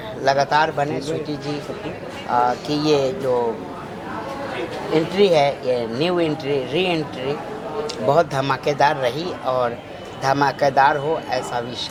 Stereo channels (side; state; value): both; identical; correlation 1.00